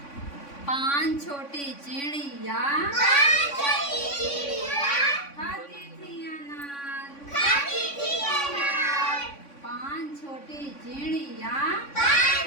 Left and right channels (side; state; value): right; late; 3.5 ms